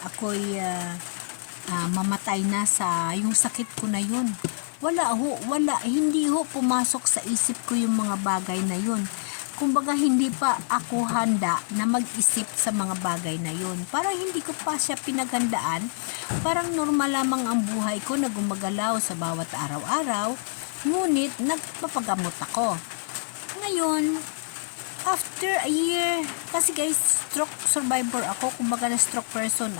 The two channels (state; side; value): silent; right; digital silence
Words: ako'y mamatay na sa yung sakit ko na yun. Wala, hindi ho pumasok sa isip ko yung mga bagay na yun. kumbaga hindi pa ako handa na mag-isip sa mga bagay na yun. Parang hindi ko pa siya pinaghandaan. Parang normal lamang ang buhay ko na gumagalaw sa bawat araw-araw. Ngunit nagpapagamot ako. Ngayon, after a year, kasi guys, stroke survivor ako, kumbaga na stroke person